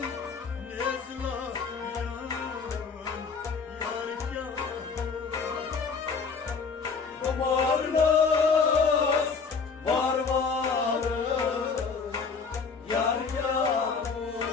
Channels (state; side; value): quieter; right; 5.2 dB